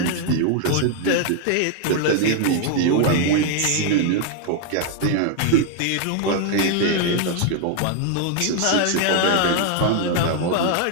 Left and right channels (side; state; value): both; different; correlation 0.00